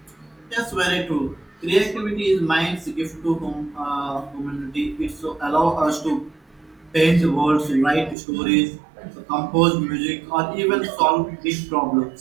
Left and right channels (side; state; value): left; drops out; at 8.2 s